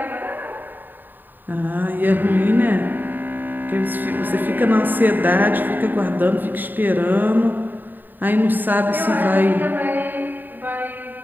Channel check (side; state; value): left; late; 0.090 ms